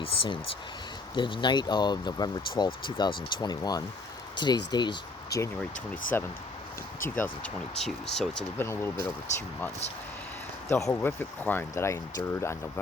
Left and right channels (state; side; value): quieter; right; 3.1 dB